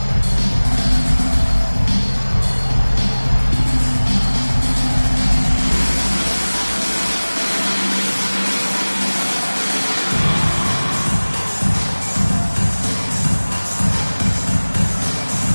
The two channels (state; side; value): inverted; both; correlation -1.00